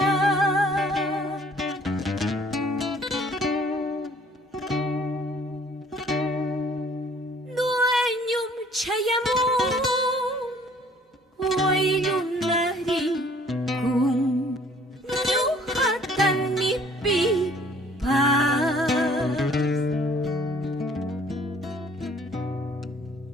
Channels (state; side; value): normal; both; correlation 0.57